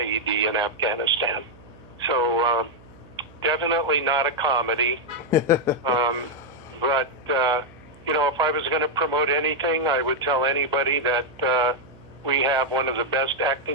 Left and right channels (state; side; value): noise; right; hum, 24 dB below the sound